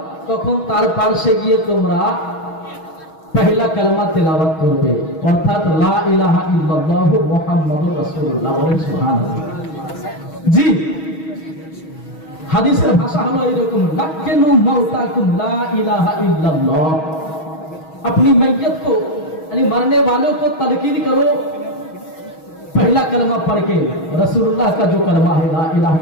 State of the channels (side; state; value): right; late; 6.3 ms